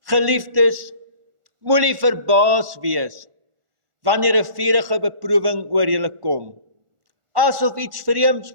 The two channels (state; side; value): late; left; 1.4 ms